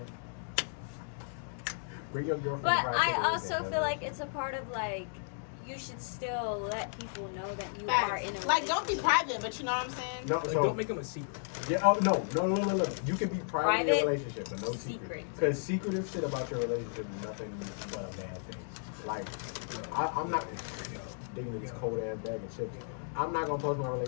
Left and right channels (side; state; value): right; silent; digital silence